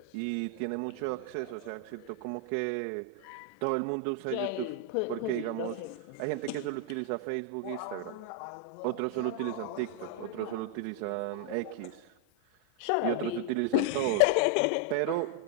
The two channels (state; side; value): different; both; correlation 0.00